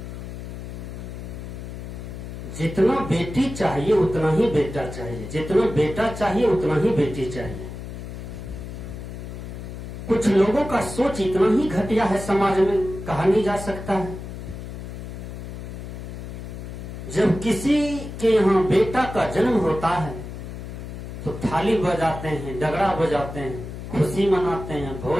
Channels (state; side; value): noise; left; hum, 9 dB below the sound